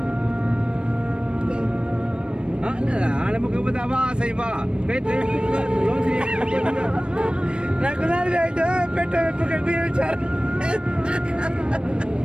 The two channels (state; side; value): late; left; 0.055 ms